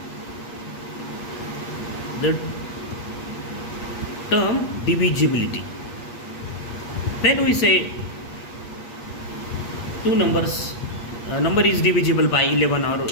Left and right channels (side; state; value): right; late; 8.4 ms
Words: the term divisibility. When we say two numbers number is divisible by 11 or